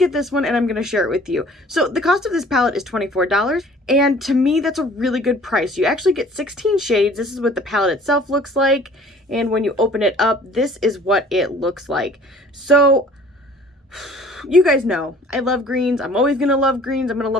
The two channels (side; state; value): both; normal; correlation 0.51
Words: this one and I'm going to share it with you. So the cost of this palette is $24, and to me that's a really good price. You actually get 16 shades. This is what the palette itself looks like, and when you open it up, this is what it looks like. So you guys know I love greens. I'm always gonna love greens. I'm gonna